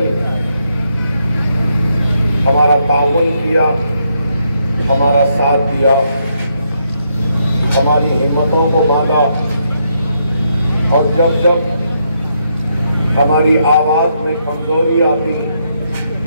हमारा ताउन किया, हमारा साथ दिया, हमारी हिम्मतों को बांधा और जब जब हमारी आवाज में कमजोरी आती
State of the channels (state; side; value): inverted; both; correlation -0.77